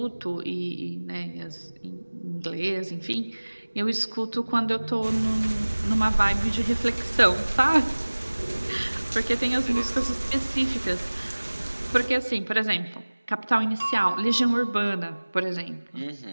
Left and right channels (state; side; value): inverted; both; correlation -1.00